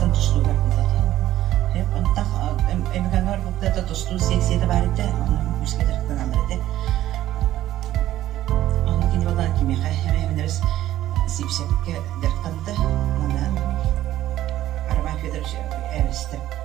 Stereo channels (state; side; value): quieter; left; 13.6 dB